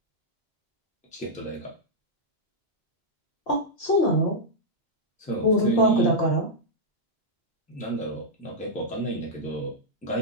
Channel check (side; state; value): both; normal; correlation -0.07